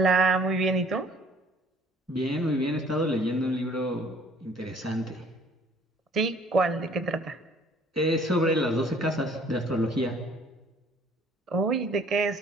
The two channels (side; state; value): both; normal; correlation 0.56